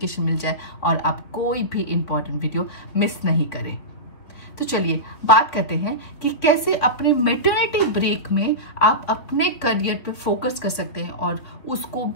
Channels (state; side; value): late; right; 3.8 ms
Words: मिल जाए और आप कोई भी इंपॉर्टेंट वीडियो मिस नहीं करें। तो चलिए बात करते हैं कि कैसे अपने मैटरनिटी ब्रेक में आप अपने करियर पे फोकस कर सकते हैं और उसको